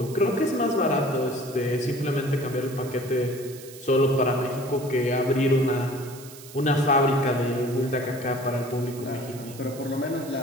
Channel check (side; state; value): right; noise; hiss, 17 dB below the sound